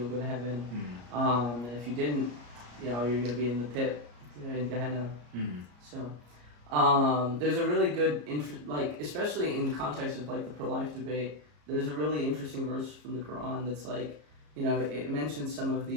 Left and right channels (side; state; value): left; late; 34 ms